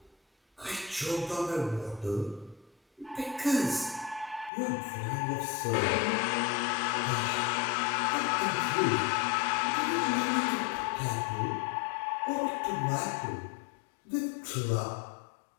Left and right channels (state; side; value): drops out; right; at 4.5 s